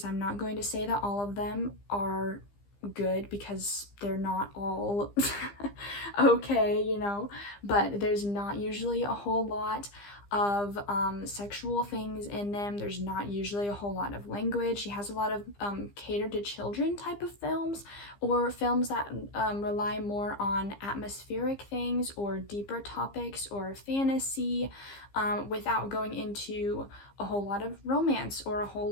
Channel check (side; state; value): right; late; 15 ms